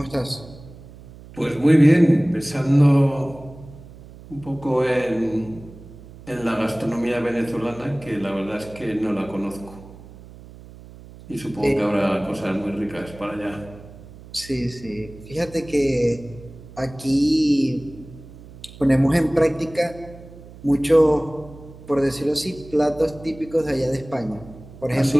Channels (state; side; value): noise; right; hum, 19 dB below the sound